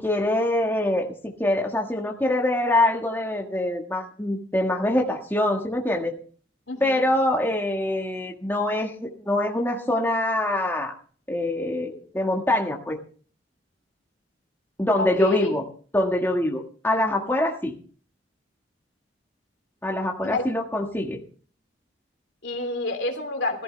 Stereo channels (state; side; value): normal; both; correlation 0.63